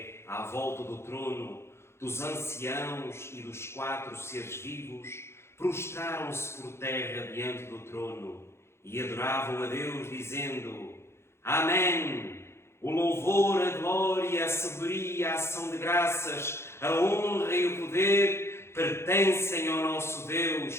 à volta do trono, dos anciãos e dos 4 seres vivos, prostraram-se por terra diante do trono e adoravam a Deus, dizendo: Amém! O louvor, a glória, a sabedoria, a ação de graças, a honra e o poder pertencem ao nosso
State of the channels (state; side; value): late; right; 0.12 ms